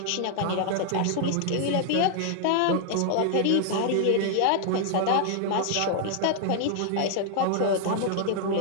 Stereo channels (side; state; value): both; different; correlation 0.00